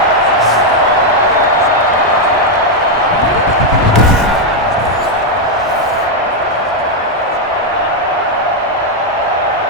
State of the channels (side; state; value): both; normal; correlation 0.01